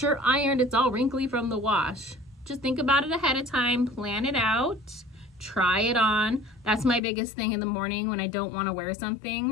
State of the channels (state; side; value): drops out; right; at 7.0 s